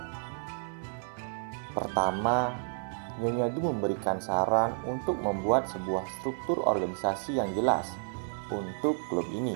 Pertama, Nyonya Du memberikan saran untuk membuat sebuah struktur organisasi yang jelas untuk klub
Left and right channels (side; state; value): left; silent; 57 dB below the other